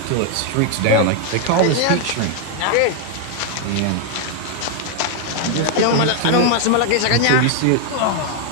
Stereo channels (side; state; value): both; different; correlation 0.00